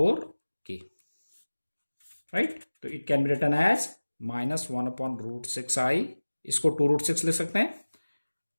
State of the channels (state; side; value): inverted; both; correlation -1.00